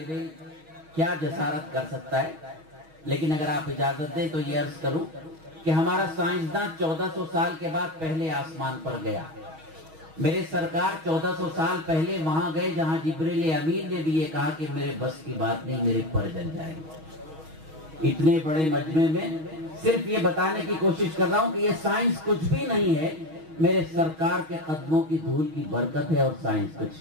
علم کیا جسارت کر سکتا ہے. لیکن اگر آپ اجازت دیں تو یہ عرض کروں کہ ہمارا سائنسداں 1400 سال کے بعد پہلے آسمان پر گیا. میرے سرکار 1400 سال پہلے وہاں گئے جہاں جبریل امین نے بھی یہ کہا کہ میرے بس کی بات نہیں، میرے پر جل جائیں گے. اتنے بڑے مجمع میں صرف یہ بتانے کی کوشش کر رہا ہوں کہ یہ سائنس کچھ بھی نہیں ہے، میرے سرکار کے قدموں کی دھول کی برکت ہے، اور سائنس کچھ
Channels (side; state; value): left; late; 6.3 ms